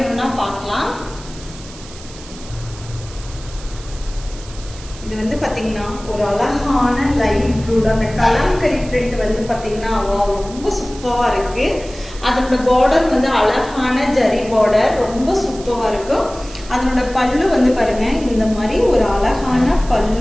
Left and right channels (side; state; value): right; noise; hiss, 18 dB below the sound